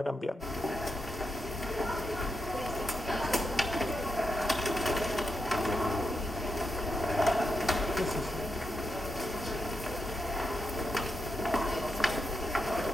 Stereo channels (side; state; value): both; normal; correlation 0.85